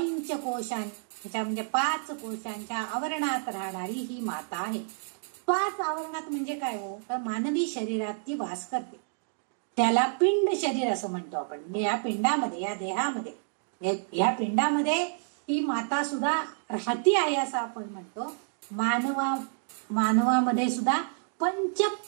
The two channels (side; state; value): left; silent; 58 dB below the other